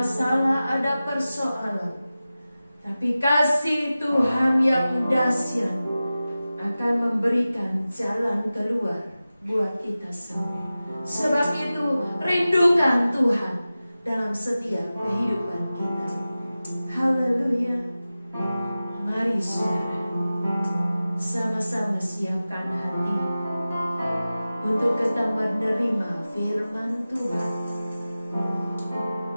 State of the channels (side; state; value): both; inverted; correlation -0.95